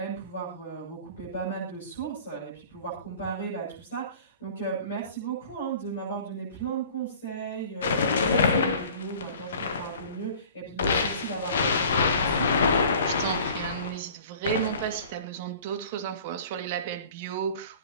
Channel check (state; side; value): inverted; both; correlation -0.46